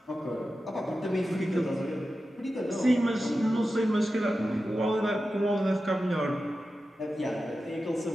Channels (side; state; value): both; normal; correlation 0.92